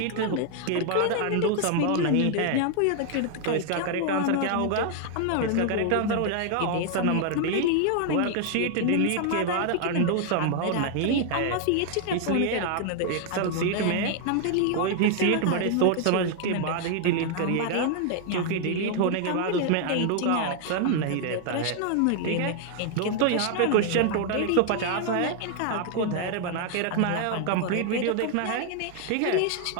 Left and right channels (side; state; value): both; different; correlation 0.00